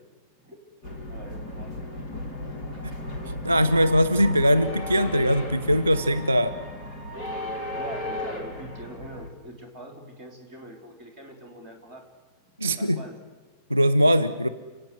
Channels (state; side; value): inverted; both; correlation -0.86